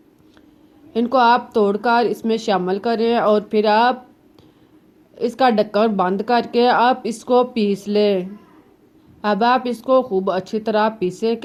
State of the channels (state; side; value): identical; both; correlation 1.00